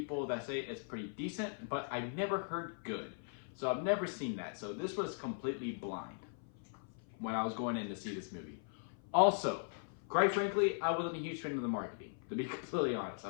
that say it's pretty decent, but I've never heard good. So I've never seen that. So this was completely blind when I was going in to see this movie. Also, quite frankly, I wasn't a huge fan of the marketing, to be completely honest.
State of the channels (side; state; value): right; silent; 52 dB below the other